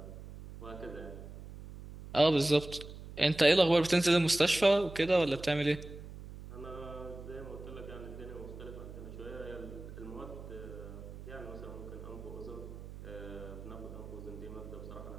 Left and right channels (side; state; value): right; noise; hum, 13 dB below the sound